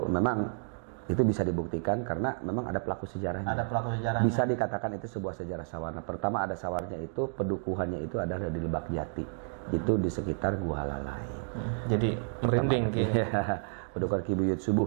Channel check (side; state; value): left; silent; 57 dB below the other